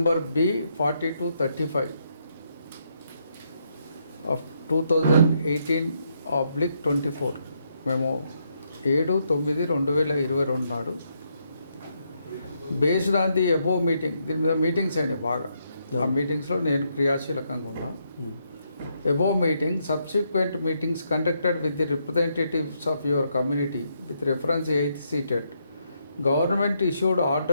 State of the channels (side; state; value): both; inverted; correlation -0.77